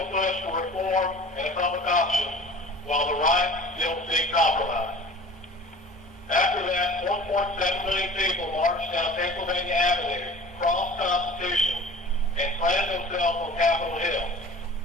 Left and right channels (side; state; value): both; normal; correlation 0.43